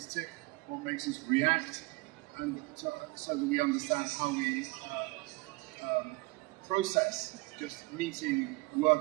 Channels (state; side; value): quieter; left; 23.3 dB